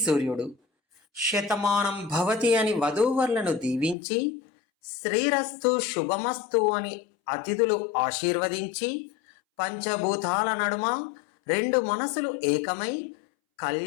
సూర్యుడు, శతమానం భవతి అని వధూవరులను దీవించి, శ్రీరస్తు శుభమస్తు అని అతిథులు ఆశీర్వదించి, పంచభూతాల నడుమ రెండు మనసులు ఏకమై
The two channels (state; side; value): drops out; right; at 4.0 s